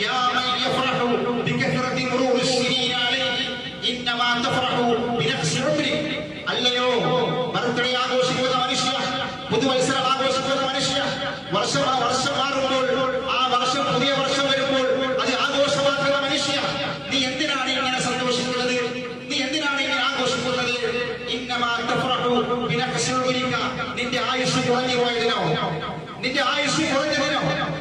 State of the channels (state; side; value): identical; both; correlation 1.00